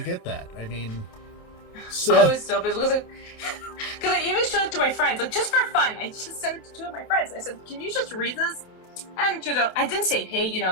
get that. I mean, so I was so pissed because I even showed it to my friends, like just for fun. I just sent it to two of my friends. I said, "Can you just read this?" And I didn't say, "Hey,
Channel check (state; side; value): late; right; 28 ms